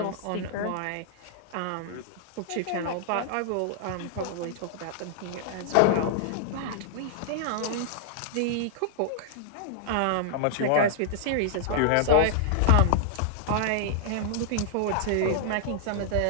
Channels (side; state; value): both; different; correlation -0.01